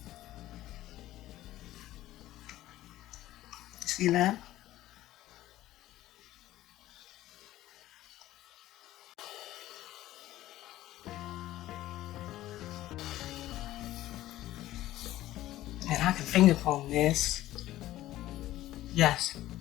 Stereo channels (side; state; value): right; quieter; 14.9 dB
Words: See that? And I can finger comb this. Yes,